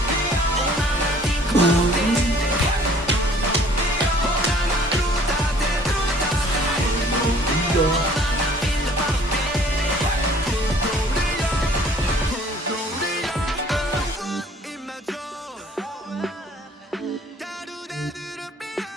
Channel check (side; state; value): both; normal; correlation 0.55